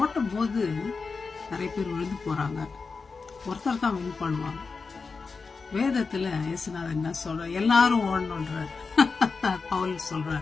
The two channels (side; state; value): right; quieter; 4.6 dB